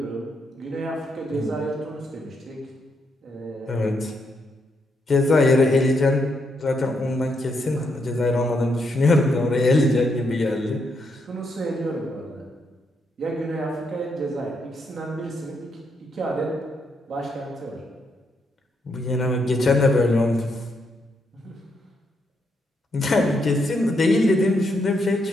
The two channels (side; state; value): both; normal; correlation 0.78